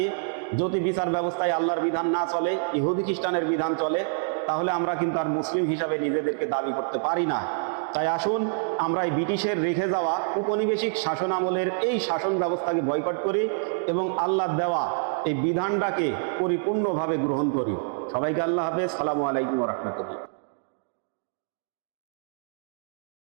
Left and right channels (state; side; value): silent; left; digital silence